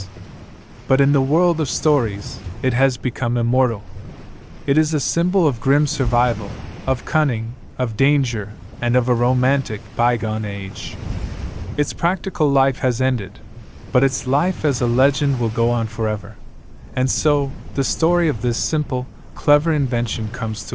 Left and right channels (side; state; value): both; identical; correlation 1.00